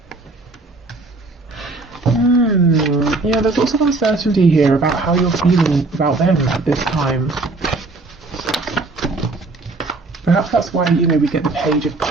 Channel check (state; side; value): quieter; left; 3.4 dB